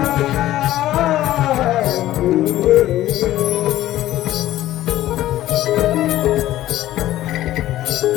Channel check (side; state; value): right; quieter; 14.4 dB